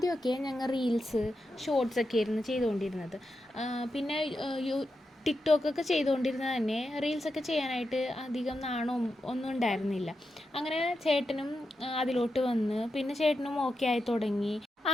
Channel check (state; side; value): normal; both; correlation 0.88